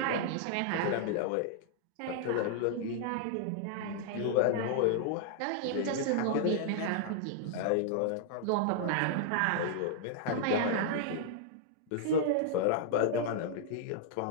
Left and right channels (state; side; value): different; both; correlation -0.01